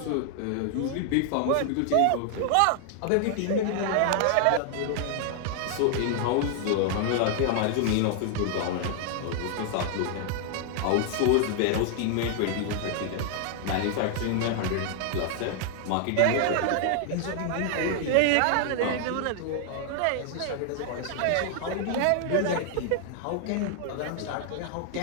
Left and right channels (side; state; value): both; different; correlation 0.00